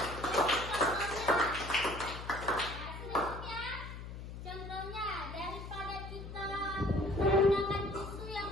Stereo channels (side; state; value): left; noise; hum, 10 dB below the sound